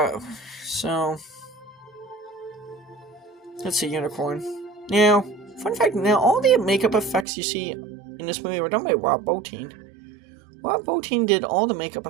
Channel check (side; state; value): left; drops out; at 7.2 s